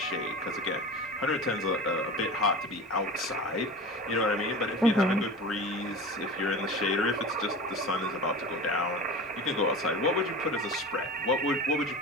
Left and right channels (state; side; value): normal; both; correlation 0.33